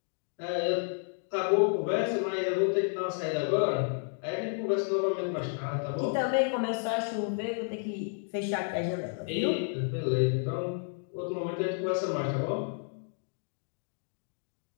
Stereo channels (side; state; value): right; silent; 56 dB below the other